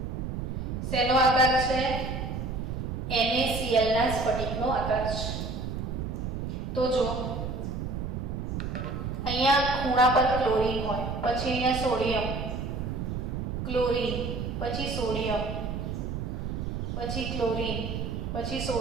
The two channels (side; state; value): right; noise; rumble, 4 dB below the sound